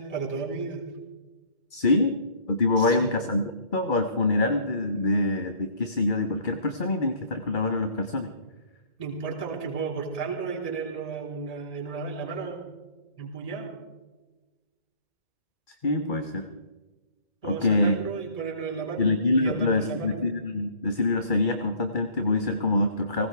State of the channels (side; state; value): right; late; 2.3 ms